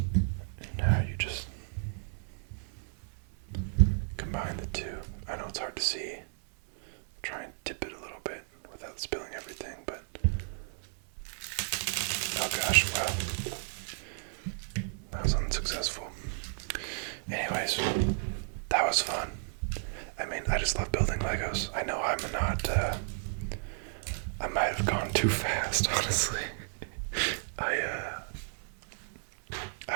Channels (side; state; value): left; silent; 56 dB below the other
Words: now you just combine the two. I know it's hard to see. Try and dip it a little bit without spilling everything, but oh gosh, wow, that was unsuccessful. Anyways, that was fun. I mean, I just love building Legos. I know I might have gone too fast, honestly. I